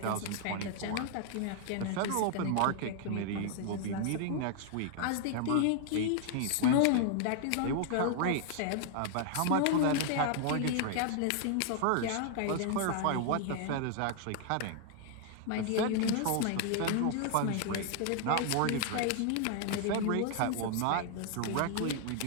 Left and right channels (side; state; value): both; different; correlation 0.00